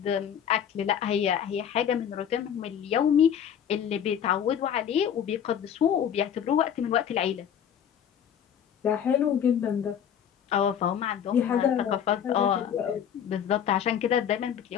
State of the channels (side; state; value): right; quieter; 8.8 dB